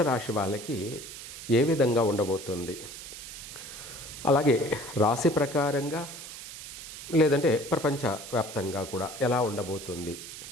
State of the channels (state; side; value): noise; right; hiss, 11 dB below the sound